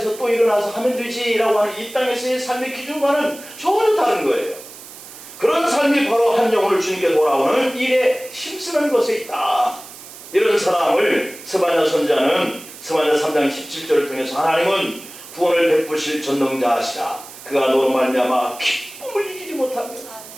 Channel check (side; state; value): right; noise; hiss, 16 dB below the sound